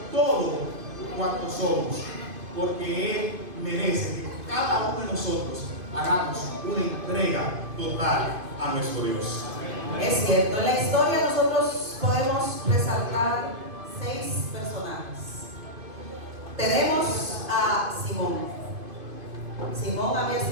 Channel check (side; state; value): left; late; 2.5 ms